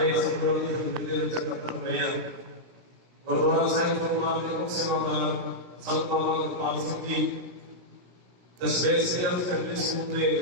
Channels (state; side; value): late; left; 17 ms